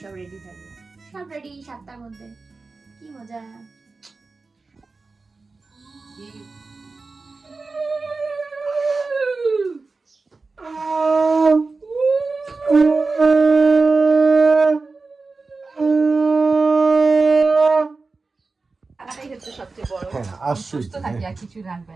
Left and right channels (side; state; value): left; quieter; 3.9 dB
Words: সব রেডি থাকবে। সব রেডি 7টার মধ্যে, কি মজা। কিছু রাখবে